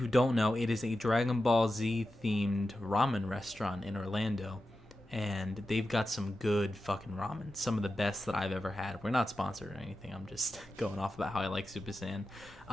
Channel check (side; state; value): both; normal; correlation 0.91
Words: don't know, it is a Dragon Ball Z themed ramen restaurant in Orlando, and they've got some good fucking ramen. Some of the best that I've ever had. We're not sponsored or anything. I'm just going off about how I like Super Saiyan.